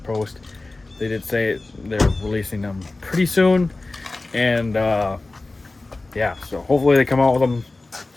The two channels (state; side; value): quieter; right; 3.2 dB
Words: post, they did say they're releasing them pretty soon. And yeah, so hopefully they come out with them